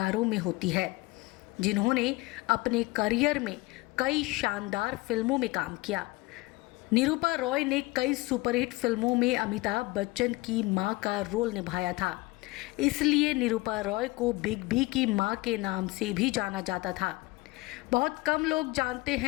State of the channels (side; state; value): right; quieter; 22.5 dB